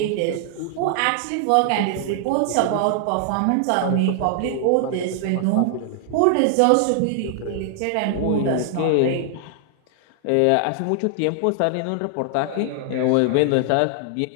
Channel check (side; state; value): both; different; correlation 0.00